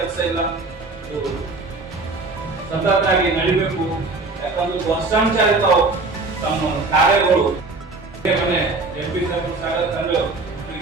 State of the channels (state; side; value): quieter; left; 3.5 dB